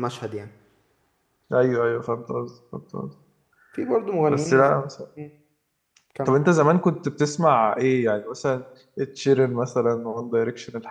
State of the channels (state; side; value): identical; both; correlation 1.00